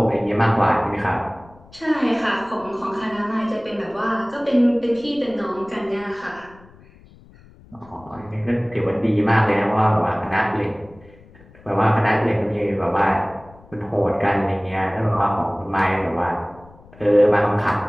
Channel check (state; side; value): noise; left; rumble, 25 dB below the sound